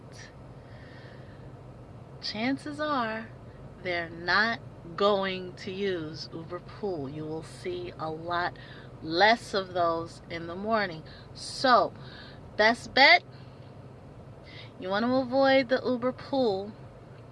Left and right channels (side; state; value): both; identical; correlation 1.00